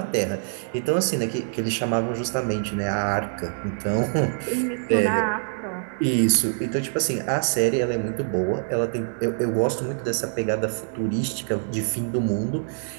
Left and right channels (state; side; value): silent; left; 62 dB below the other